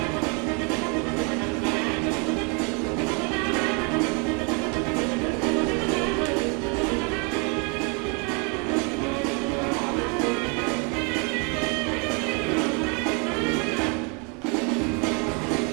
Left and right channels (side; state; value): left; quieter; 33.2 dB